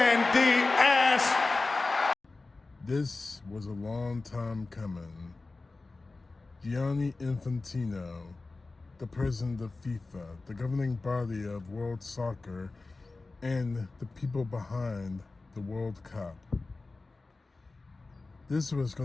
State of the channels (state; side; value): quieter; right; 3.5 dB